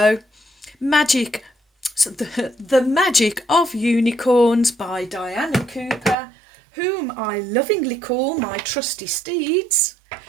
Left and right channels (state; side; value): drops out; left; at 6.2 s